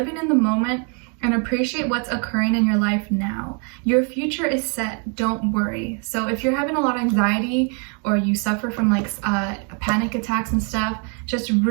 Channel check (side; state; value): left; quieter; 39.1 dB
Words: in the moment, and appreciate what's occurring in your life now. Your future is set, don't worry. So if you're having a lot of anxiety or you suffer from like panic attacks and stuff, just